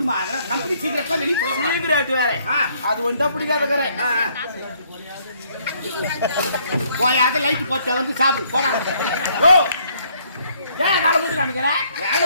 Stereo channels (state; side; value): inverted; both; correlation -0.67